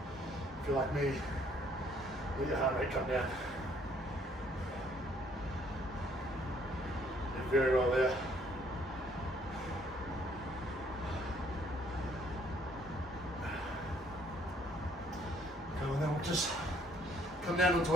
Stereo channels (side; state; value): both; normal; correlation 0.65